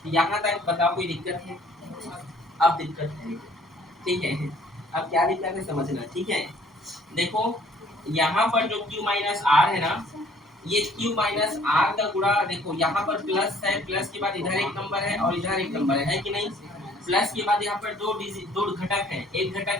यहाँ तक बताओ कोई दिक्कत है, अब दिक्कत है, ठीक है। अब क्या दिक्कत है समझना, ठीक है। देखो यहाँ पर जो Q माइनस आर है ना, ये Q माइनस आर का गुणा, देखो यहाँ पर प्लस है, प्लस के बाद इधर एक नंबर है और इधर एक नंबर है कि नहीं। प्लस के बाद यहाँ पर दो घटक है, एक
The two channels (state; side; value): normal; both; correlation 0.58